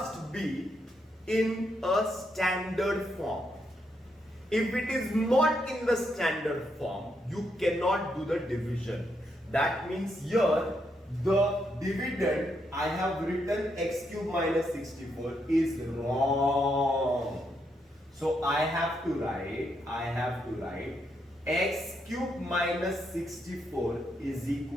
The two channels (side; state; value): both; normal; correlation 0.79